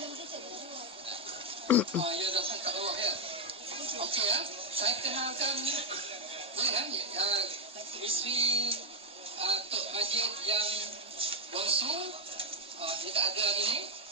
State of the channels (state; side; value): normal; both; correlation 0.01